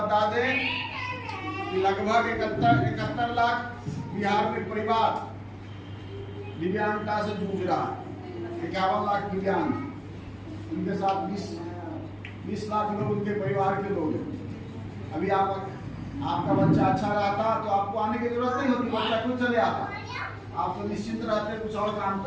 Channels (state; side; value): identical; both; correlation 1.00